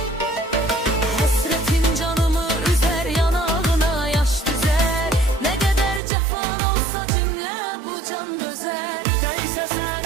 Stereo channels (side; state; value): left; drops out; at 6.0 s